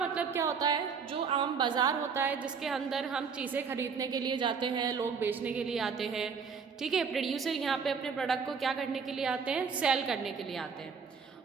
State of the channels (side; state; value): left; quieter; 5.8 dB